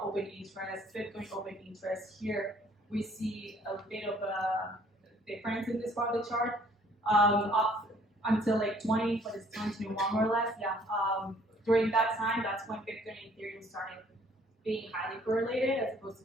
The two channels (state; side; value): normal; both; correlation 0.59